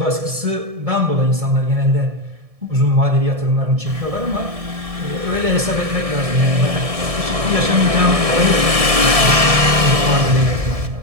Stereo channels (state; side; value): late; left; 1.7 ms